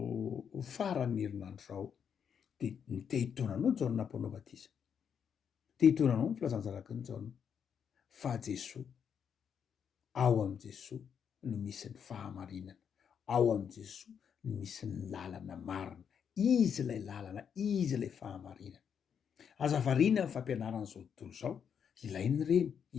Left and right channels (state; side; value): quieter; right; 7.5 dB